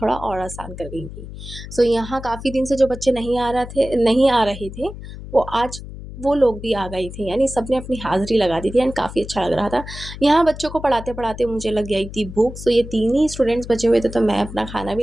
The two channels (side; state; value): left; noise; hum, 12 dB below the sound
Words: थोड़ा और आसान कर गई थी। सो यहाँ काफ़ी दिन से जो बच्चे नहीं आ रहे थे, वो आज वो लोग भी आ गए थे, यानी सबने अपनी हाज़िरी लगा दी थी एंड काफ़ी अच्छा लग रहा था। यहाँ बच्चों को पढ़ाते-पढ़ाते मुझे लग गई थी भूख, सो ये 3 ही स्टूडेंट्स बचे हुए थे, तो मैं अपना खाना